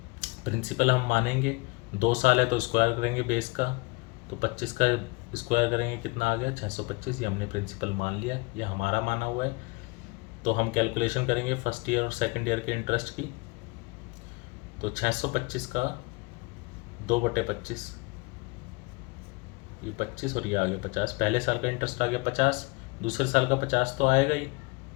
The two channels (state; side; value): quieter; right; 26.0 dB